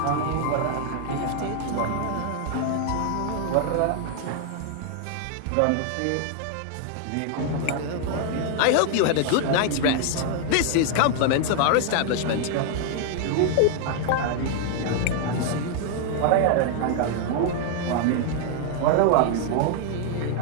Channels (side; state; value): both; different; correlation 0.00